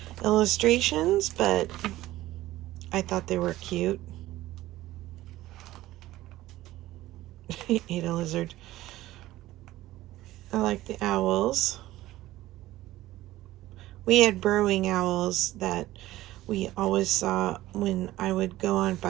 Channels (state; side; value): quieter; left; 16.1 dB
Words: illustrations, but I thought they were cute. He ate a lizard. I like the owls. We had burrowing owls that we always saw when I would go on